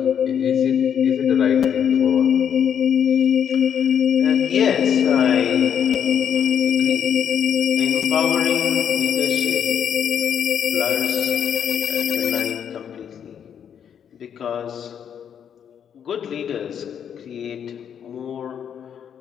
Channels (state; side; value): quieter; right; 8.4 dB